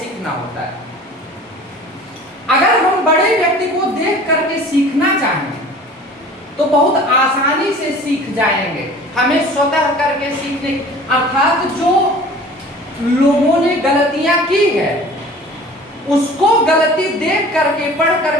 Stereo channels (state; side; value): normal; both; correlation 0.44